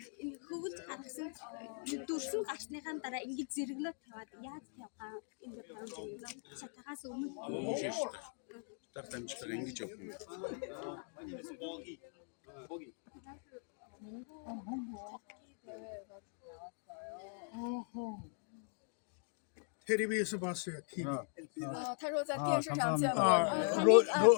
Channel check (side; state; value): right; silent; 51 dB below the other